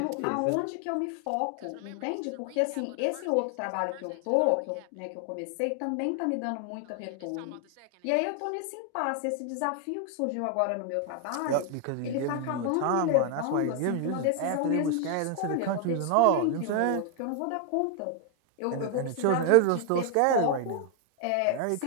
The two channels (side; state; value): both; different; correlation 0.00